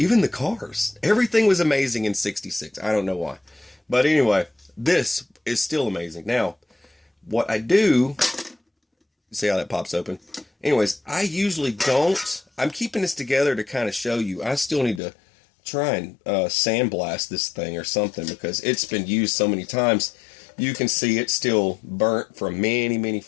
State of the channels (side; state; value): right; drops out; at 15.0 s